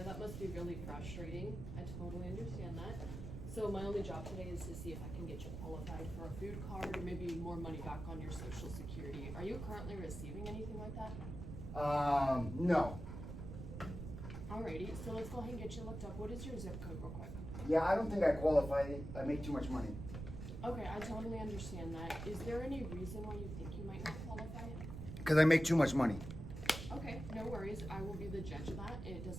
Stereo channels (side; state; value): right; noise; rumble, 8 dB below the sound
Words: That must be really frustrating. I totally understand that. So my only job today is to see if I can get you qualified for a food card or maybe more money back on your Social Security. Are you currently receiving anything like that? No. Alrighty, so let's go ahead and get you looked up. What is your zip code real quick? Yeah, I don't think I qualify. I make too much money. Okay, I totally understand that. Is there any reason why you think you might not qualify? Because I make too much money. Okay, no worries. I will be the judge of that. It